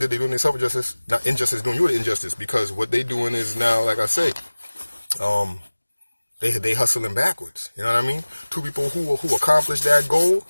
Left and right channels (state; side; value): inverted; both; correlation -1.00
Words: they do themselves injustice, not injustice, doing you the injustice, because what they doing is now, like I say, they hustling backwards. You know what I mean? Two people who accomplish that goal,